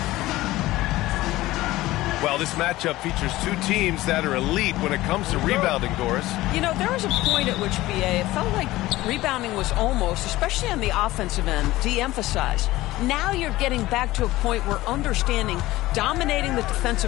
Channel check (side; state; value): right; quieter; 17.5 dB